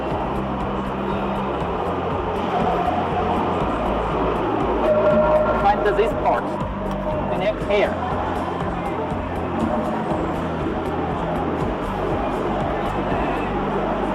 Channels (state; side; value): identical; both; correlation 1.00